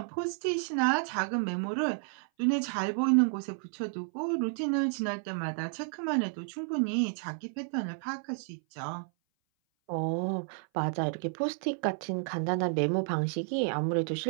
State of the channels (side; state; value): left; silent; 57 dB below the other